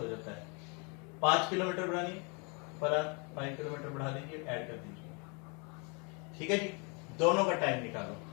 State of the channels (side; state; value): right; quieter; 32.6 dB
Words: जाता है। 5 किलोमीटर बढ़ानी पर आवर, 5 किलोमीटर बढ़ा दीजिए, ऐड कर दीजिए। ठीक है जी, दोनों का टाइम